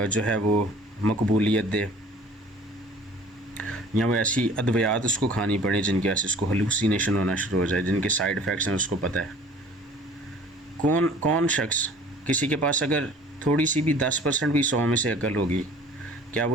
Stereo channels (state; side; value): normal; both; correlation 0.49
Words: है वो मकबूलियत दे, या वो ऐसी अद्वियात उसको खानी पड़े जिनकी वजह से उसको हलूसिनेशन होना शुरू हो जाए, जिनके साइड इफ़ेक्ट्स हैं उसको पता है। कौन शख्स, किसी के पास अगर थोड़ी सी भी 10% भी 100 में से अकल होगी, क्या